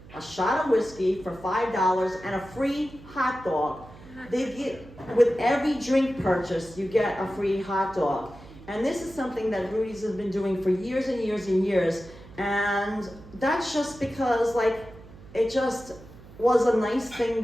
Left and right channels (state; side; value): noise; right; hum, 19 dB below the sound